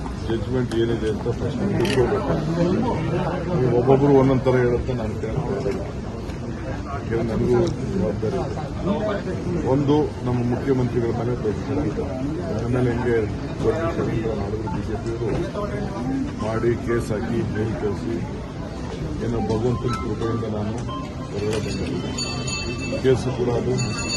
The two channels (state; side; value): identical; both; correlation 1.00